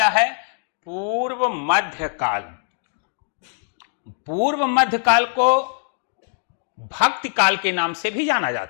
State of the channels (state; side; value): silent; right; 63 dB below the other